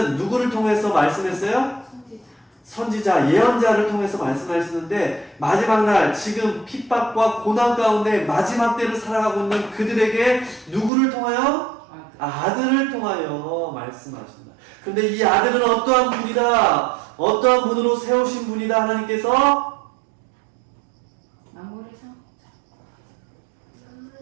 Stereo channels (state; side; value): drops out; left; at 10.9 s